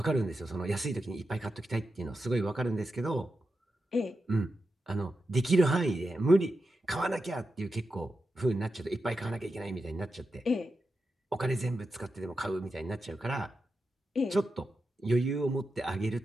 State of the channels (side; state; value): both; normal; correlation 0.89